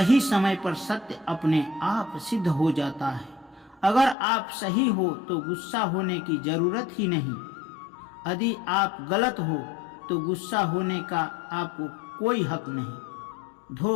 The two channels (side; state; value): right; drops out; at 4.2 s